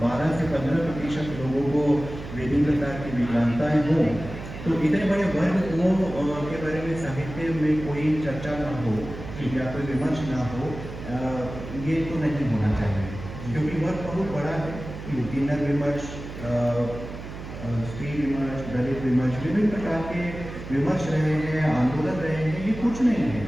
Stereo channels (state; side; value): noise; right; hum, 11 dB below the sound